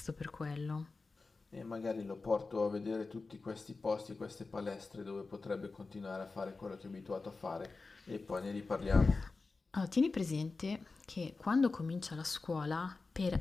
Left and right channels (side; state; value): right; quieter; 3.9 dB